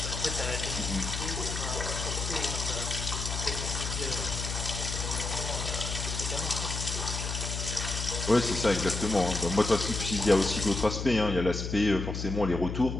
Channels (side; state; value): left; noise; hum, 4 dB below the sound